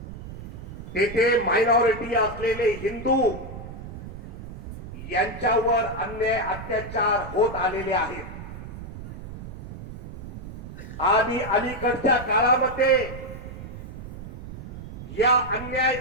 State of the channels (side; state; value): right; noise; rumble, 12 dB below the sound